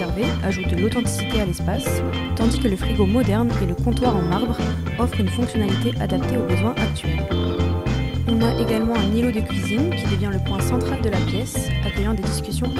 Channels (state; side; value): identical; both; correlation 1.00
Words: ajoutent de l'authenticité à l'espace, tandis que le frigo moderne et le comptoir en marbre offrent une fonctionnalité adaptée aux besoins actuels. On a également un îlot de cuisine qui devient le point central de la pièce, accueillant des discussions